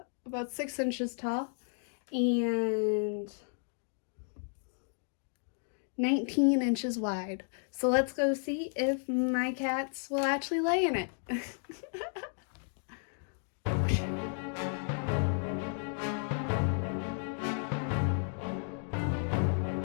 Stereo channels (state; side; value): silent; right; 56 dB below the other